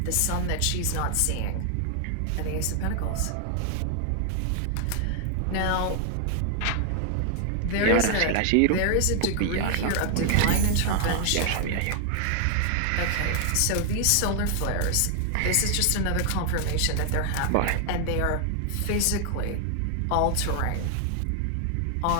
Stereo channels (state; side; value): different; both; correlation 0.00